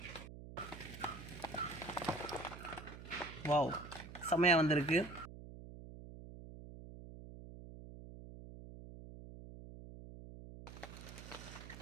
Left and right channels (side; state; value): right; noise; hum, 13 dB below the sound